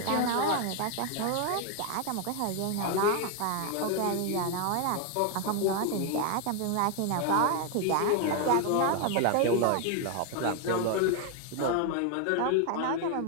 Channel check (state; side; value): different; both; correlation 0.01